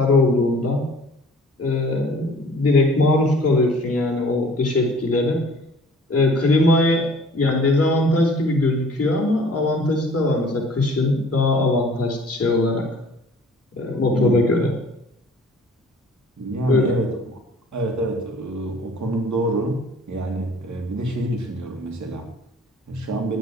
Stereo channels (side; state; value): both; normal; correlation 0.51